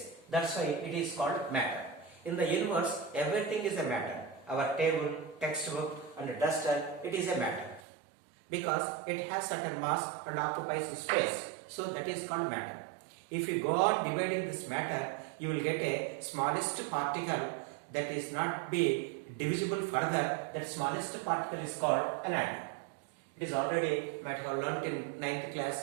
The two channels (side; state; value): left; drops out; at 7.8 s